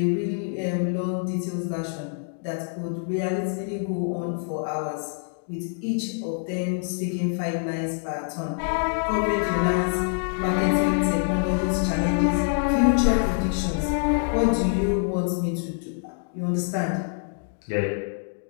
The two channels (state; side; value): silent; right; digital silence